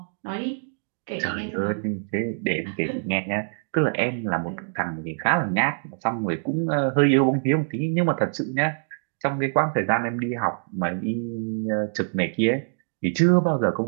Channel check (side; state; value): left; silent; digital silence